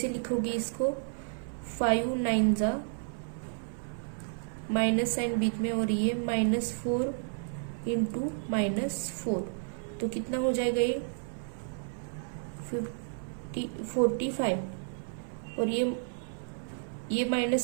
लिखोगे इसको, 5 9 जा माइनस साइन बीच में और ये -4 इंटू -4 तो कितना हो जाएगा, ये 45 और ये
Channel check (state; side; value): silent; left; 57 dB below the other